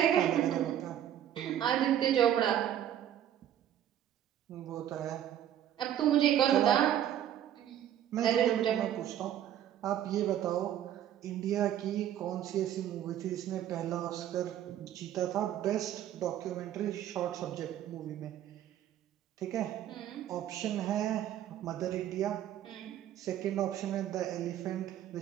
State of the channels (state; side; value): quieter; left; 11.0 dB